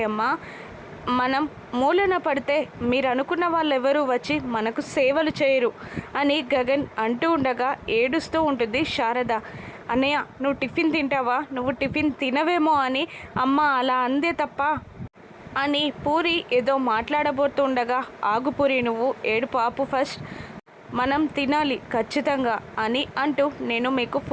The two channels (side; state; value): both; identical; correlation 1.00